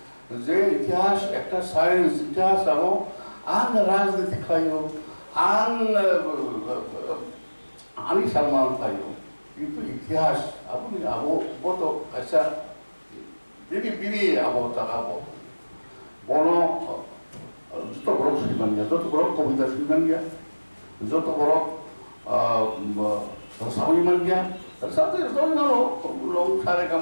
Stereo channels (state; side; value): inverted; both; correlation -1.00